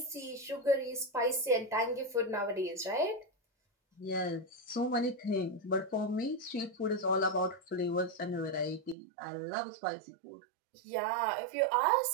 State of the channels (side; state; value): left; drops out; at 9.0 s